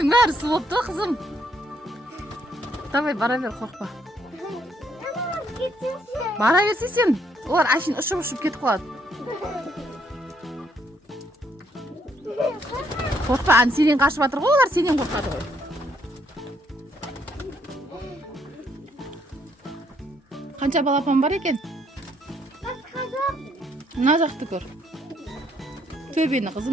бәрі су болыпты, қызым. Давай, бара бер, қорқпа. Бара берсе сен, олар әшейін ұшып кетіп қалады. Қорқпа, сенен қашып жатыр ғой, олар сенен қорқады ғой. Қанша балапан бар екен? Мына жақты көр. Төбені,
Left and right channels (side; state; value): both; normal; correlation 0.70